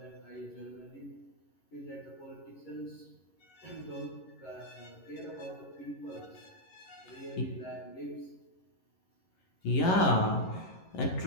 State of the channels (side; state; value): right; late; 11 ms